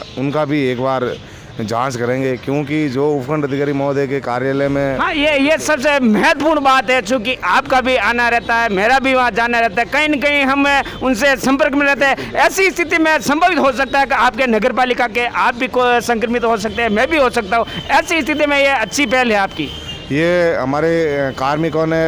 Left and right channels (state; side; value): identical; both; correlation 1.00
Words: उनका भी एक बार जांच करेंगे, क्योंकि जो उपखंड अधिकारी महोदय के कार्यालय में हाँ ये सबसे महत्वपूर्ण बात है। चूँकि आपका भी आना रहता है, मेरा भी वहाँ जाना रहता है, कहीं न कहीं हम उनसे संपर्क में रहते हैं। ऐसी स्थिति में संभवित हो सकता है कि आपके नगर पालिका के आप भी संक्रमित हो सकते हैं, मैं भी हो सकता हूँ। ऐसी स्थिति में ये अच्छी पहल है आपकी। ये हमारे कार्मिकों